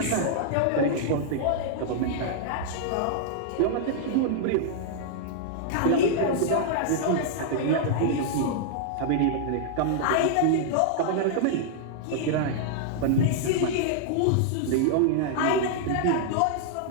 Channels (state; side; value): different; both; correlation -0.01